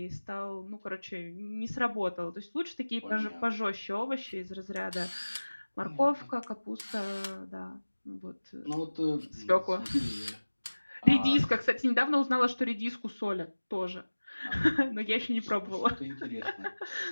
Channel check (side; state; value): both; inverted; correlation -1.00